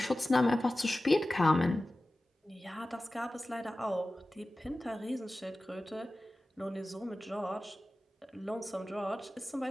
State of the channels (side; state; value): both; normal; correlation 0.96